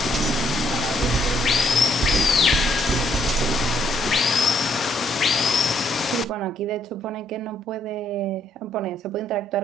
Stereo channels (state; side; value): normal; both; correlation 0.69